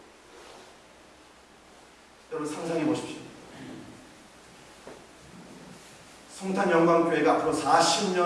여러분, 상상해 보십시오. 송탄 영광교회가 앞으로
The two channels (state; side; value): identical; both; correlation 1.00